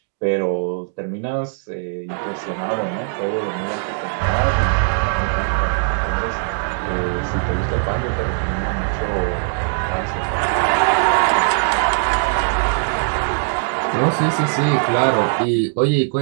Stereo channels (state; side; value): silent; left; digital silence